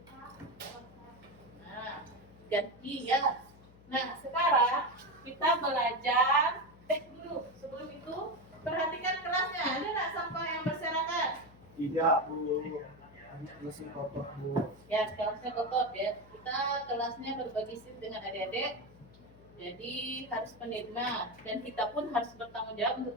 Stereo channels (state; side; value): noise; left; hum, 23 dB below the sound